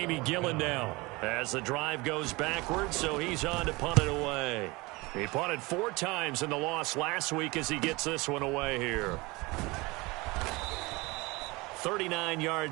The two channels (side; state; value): left; quieter; 23.7 dB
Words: Gillen now as the drive goes backwards, so he's on to punt it away. He punted 4 times in the loss last week as he gets this one away here. 39